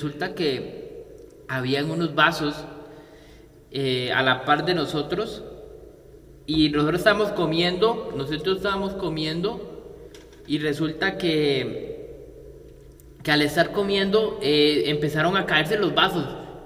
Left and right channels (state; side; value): identical; both; correlation 1.00